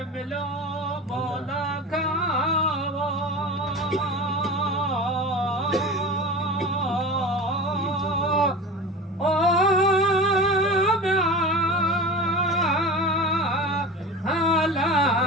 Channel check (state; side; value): normal; both; correlation 0.32